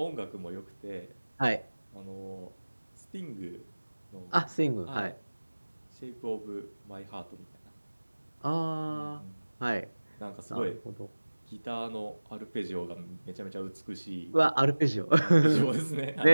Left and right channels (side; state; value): both; inverted; correlation -1.00